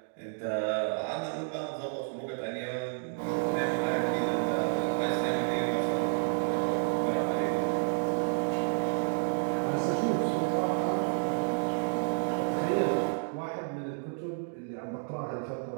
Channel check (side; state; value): left; silent; digital silence